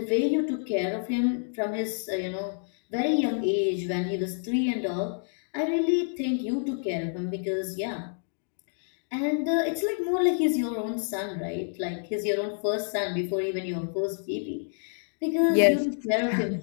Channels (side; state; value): right; silent; 59 dB below the other